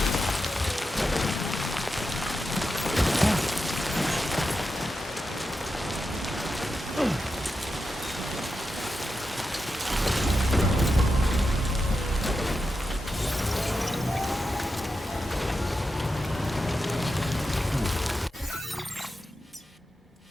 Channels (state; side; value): normal; both; correlation 0.89